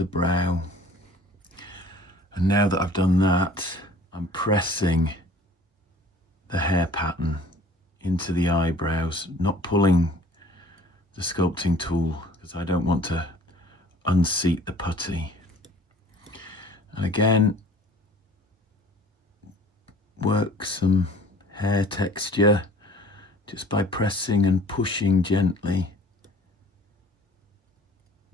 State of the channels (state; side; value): normal; both; correlation 0.49